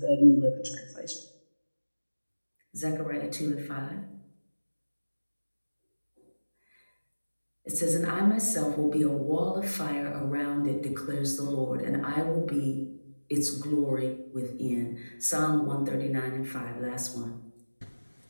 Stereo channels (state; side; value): inverted; both; correlation -1.00